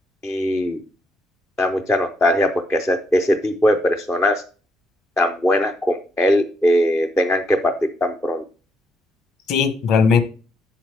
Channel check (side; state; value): both; normal; correlation 0.75